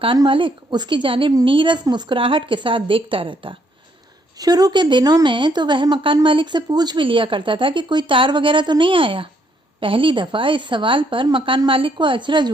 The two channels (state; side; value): normal; both; correlation 0.71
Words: मालिक उसकी जानिब नीरस मुस्कुराहट के साथ देखता रहता। शुरू के दिनों में तो वह मकान मालिक से पूछ भी लिया करता था कि कोई तार वगैरह तो नहीं आया। पहली दफा इस सवाल पर मकान मालिक को अचरज